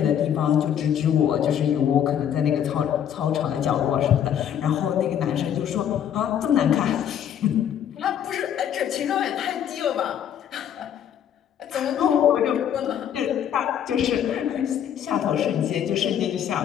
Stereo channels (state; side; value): quieter; right; 9.5 dB